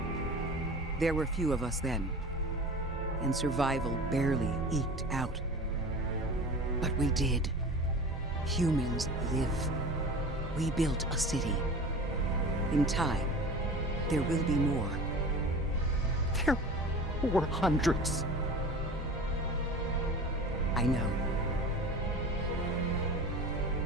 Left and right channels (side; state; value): both; normal; correlation 0.36